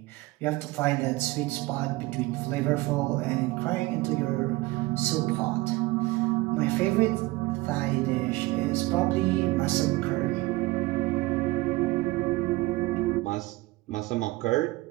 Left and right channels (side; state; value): left; quieter; 20.7 dB